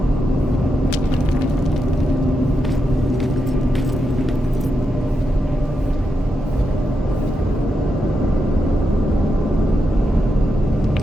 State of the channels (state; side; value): normal; both; correlation 0.85